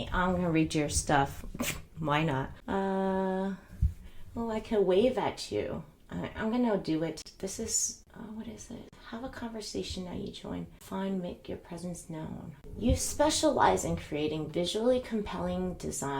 I'm gonna read your stuff. Why not? Oh, I can wave at you. I'm gonna do it. This is, what is it? Have a conversation now you join. Find, make your presence known. You specialize in creating visually compelling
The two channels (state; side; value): identical; both; correlation 1.00